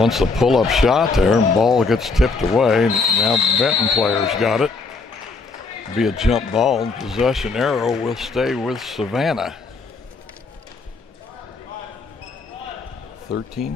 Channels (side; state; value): right; quieter; 4.0 dB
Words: a pull-up shot there, and ball gets tipped away. Now Benton players got it. Be a jump ball. Possession arrow will stay with Savannah.